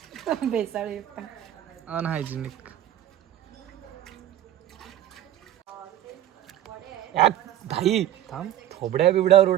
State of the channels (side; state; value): left; quieter; 12.1 dB